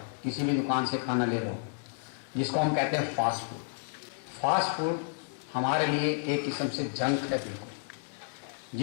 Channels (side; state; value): right; silent; 57 dB below the other